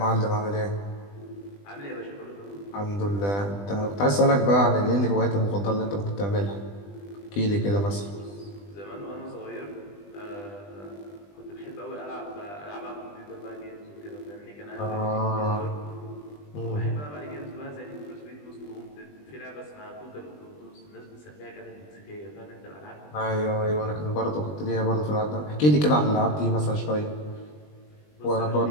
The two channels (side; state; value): right; late; 20 ms